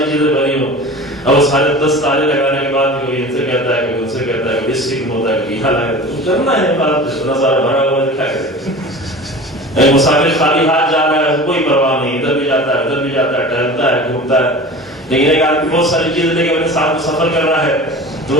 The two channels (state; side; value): normal; both; correlation 0.37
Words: چیزیں بنی ہو، اب وہ سارے 10 تالے لگانے کے بعد کوئی ان سے کہتا ہے، کوئی ان سے کہتا ہے، کوئی اس فکر ہوتا ہے کہ یہاں لگا تو کرنا ہے، اتنا سارا بھرا ہوا ہے، کیا کرے؟ ایک مسافر خالی ہاتھ جا رہا ہے، کوئی پرواہ نہیں، ادھر بھی جاتا ہے ادھر بھی جاتا ہے، ٹہلتا ہے گھومتا ہے۔ لیکن ایک آدمی بہت ساری چیزیں لے کے اپنے ساتھ میں سفر کر رہا ہے تو